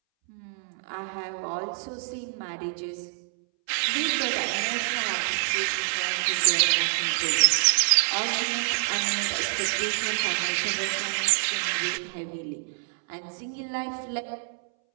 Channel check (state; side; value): silent; left; 60 dB below the other